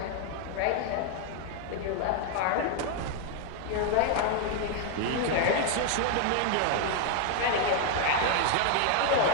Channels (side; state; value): both; different; correlation 0.00